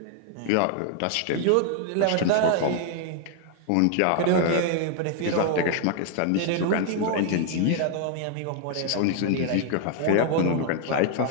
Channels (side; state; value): both; different; correlation 0.00